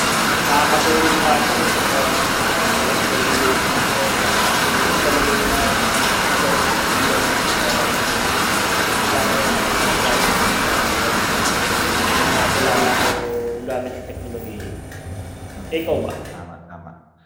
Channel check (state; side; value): identical; both; correlation 1.00